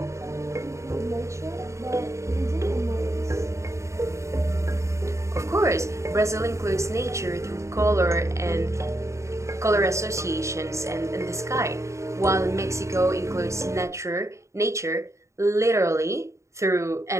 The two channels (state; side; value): late; left; 0.14 ms